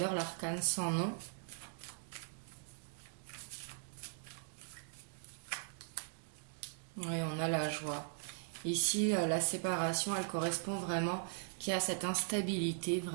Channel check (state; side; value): silent; left; digital silence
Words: l'arcane sans nom. Oui, on a la joie. Ici, la séparation, elle correspond vraiment qu'il y a cette instabilité